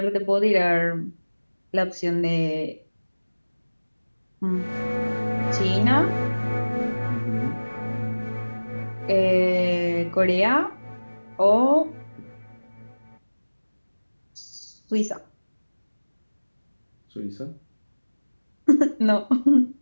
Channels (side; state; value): both; inverted; correlation -1.00